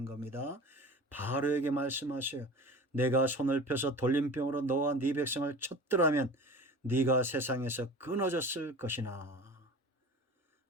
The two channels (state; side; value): normal; both; correlation 0.37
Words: 겁니다. 바로에게 말씀하세요. 내가 손을 펴서 돌림병으로 너와 네 백성을 쳤더라면 네가 세상에서 끊어졌을 것이나.